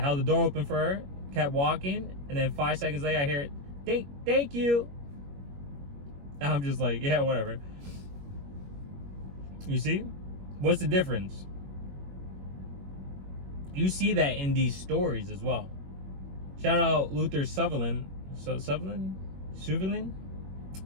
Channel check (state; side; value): late; left; 21 ms